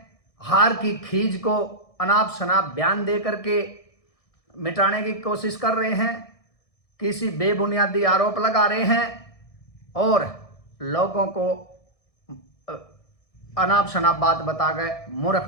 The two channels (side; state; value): right; late; 1.6 ms